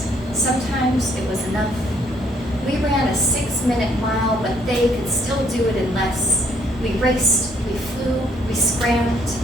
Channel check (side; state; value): both; normal; correlation 0.67